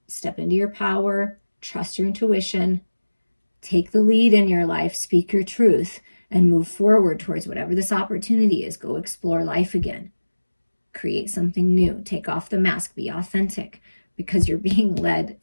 step into your power, trust your intuition, take the lead in your life, speak your truth, and move forward towards whatever this opportunity is. Go explore life again. Create something new. Take off the mask. Be authentic, because you're being led,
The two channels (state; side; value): inverted; both; correlation -1.00